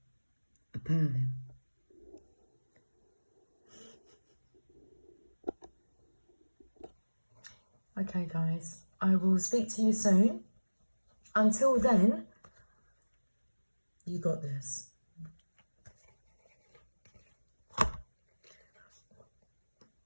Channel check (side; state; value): both; inverted; correlation -1.00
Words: A purring. Okay, guys, I will speak to you soon. Until then, you got this.